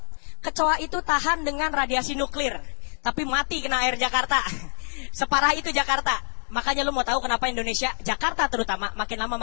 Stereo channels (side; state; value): right; silent; digital silence